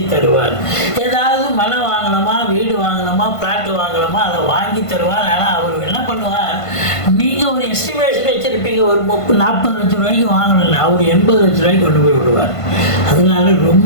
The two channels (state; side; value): late; right; 1.5 ms